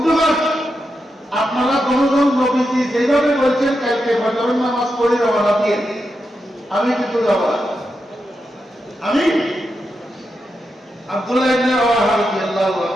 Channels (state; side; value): normal; both; correlation 0.86